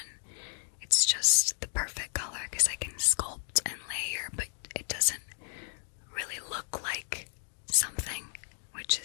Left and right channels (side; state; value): right; silent; 56 dB below the other